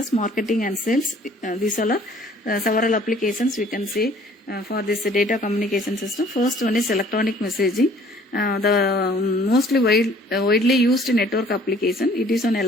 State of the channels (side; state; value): both; normal; correlation 0.55